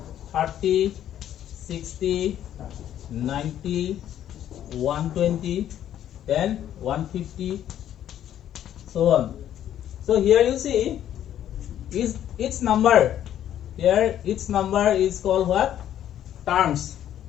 30, 60, 90, 120, then 150, so on. So here you see is each number. Here each number is called what? Terms.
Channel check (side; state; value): right; quieter; 11.0 dB